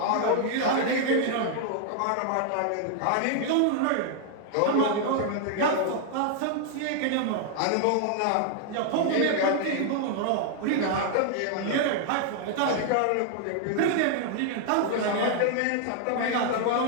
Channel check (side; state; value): both; different; correlation 0.00